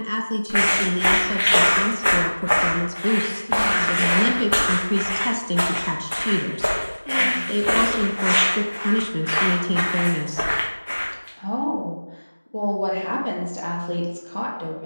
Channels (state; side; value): inverted; both; correlation -1.00